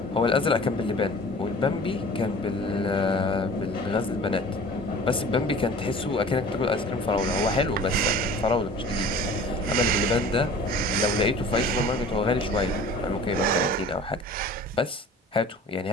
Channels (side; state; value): both; normal; correlation 0.44